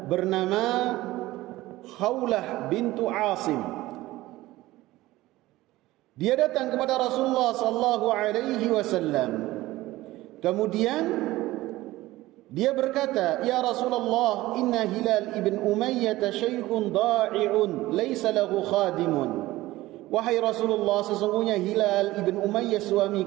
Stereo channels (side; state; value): left; quieter; 17.6 dB